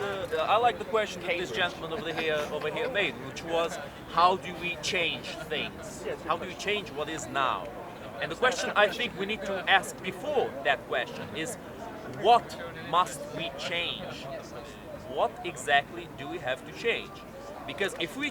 like the question that this gentleman over here made, which was, how do we change things? How do we change what is now? And the question I think we need to ask before that question is, what must we change? What exactly do we have to change? Because if we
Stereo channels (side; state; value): both; identical; correlation 1.00